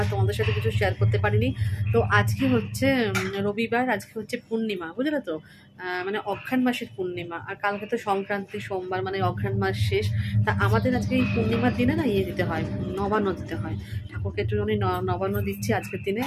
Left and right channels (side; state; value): both; identical; correlation 1.00